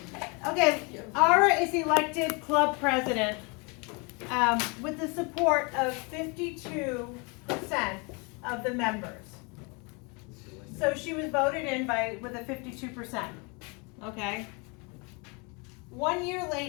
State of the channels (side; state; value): right; quieter; 31.1 dB